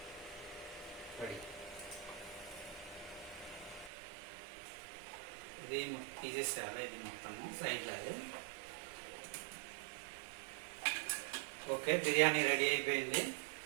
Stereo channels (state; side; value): drops out; left; at 3.9 s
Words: రెడీ. ఇది తీసేసేయాలి, ఇది మొత్తము సైడ్లో. ఓకే, బిర్యానీ రెడీ అయిపోయింది.